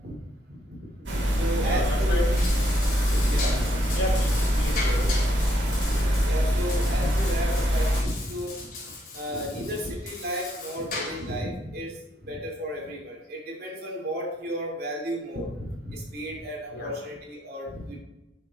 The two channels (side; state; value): both; normal; correlation 0.74